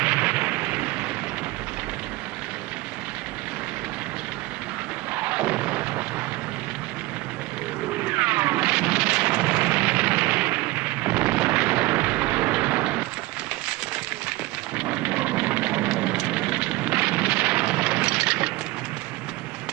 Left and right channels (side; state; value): left; quieter; 19.9 dB